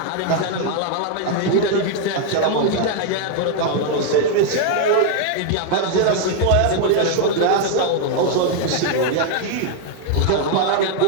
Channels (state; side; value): different; both; correlation 0.00